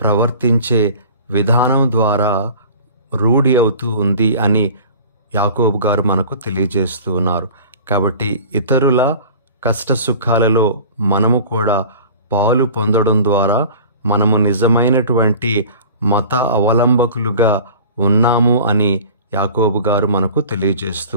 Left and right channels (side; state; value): both; inverted; correlation -0.43